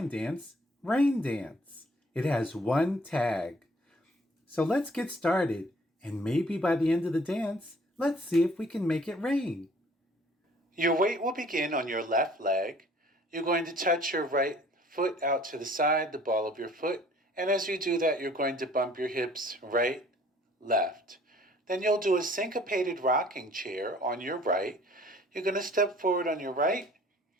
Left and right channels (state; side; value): normal; both; correlation 0.55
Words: dance, rain dance. It has one tag. So let's get started, and maybe by the end of the dance, let's see if we can make it rain. Your weight will begin on your left leg. You're going to touch your right foot out to the side, the ball of your foot, and as you do that, you're going to bump your hips right, left. Then you'll do a syncopated rocking chair on your right. You're going to step forward on your right,